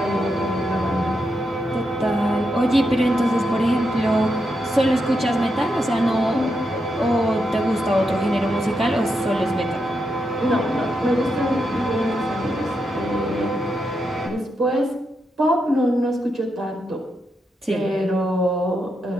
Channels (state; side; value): normal; both; correlation 0.84